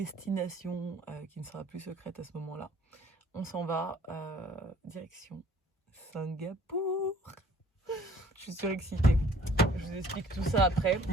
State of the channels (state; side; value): normal; both; correlation 0.55